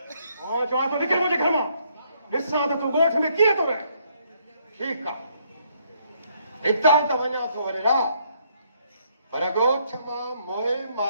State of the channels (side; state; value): both; inverted; correlation -0.70